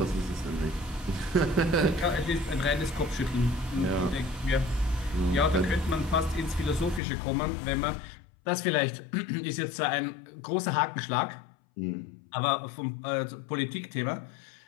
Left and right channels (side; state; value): right; drops out; at 7.0 s